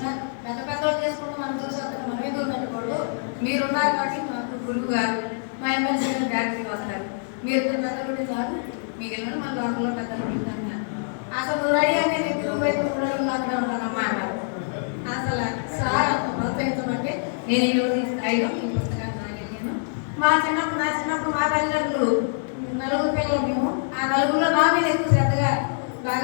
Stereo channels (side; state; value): right; silent; digital silence